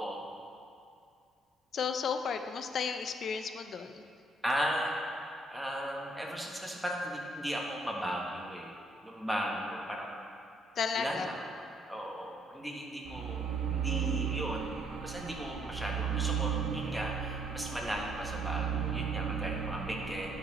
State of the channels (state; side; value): normal; both; correlation 0.67